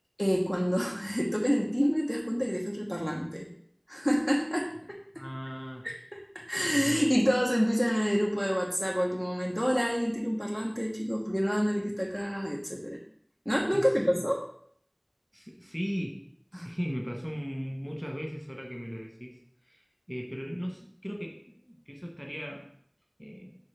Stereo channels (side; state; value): both; identical; correlation 1.00